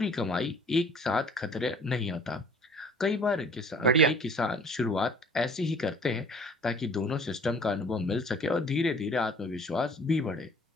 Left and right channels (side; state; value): both; normal; correlation 0.51